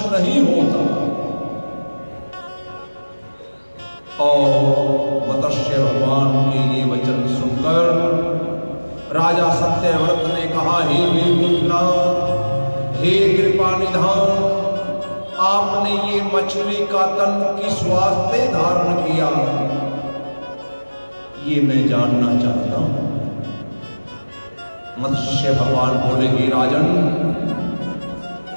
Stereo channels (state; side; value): inverted; both; correlation -1.00